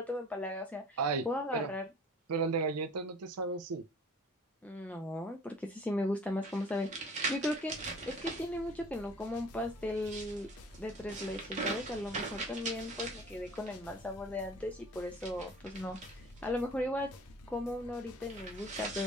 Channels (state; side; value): normal; both; correlation 0.46